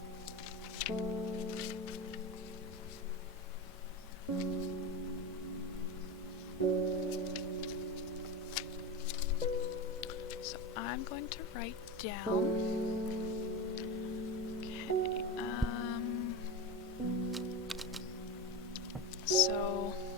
So I'm going to write down... Okay, so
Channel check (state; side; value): normal; both; correlation 0.20